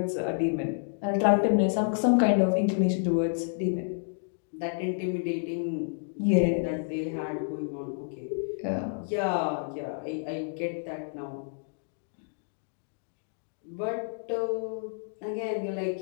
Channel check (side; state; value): right; silent; digital silence